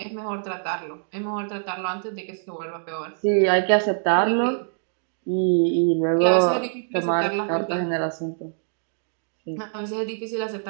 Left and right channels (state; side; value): silent; left; digital silence